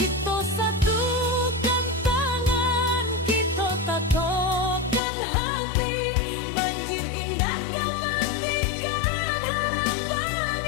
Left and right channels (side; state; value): right; drops out; at 5.0 s